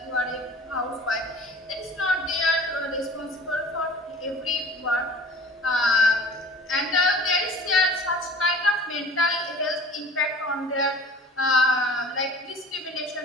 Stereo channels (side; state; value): both; normal; correlation 0.43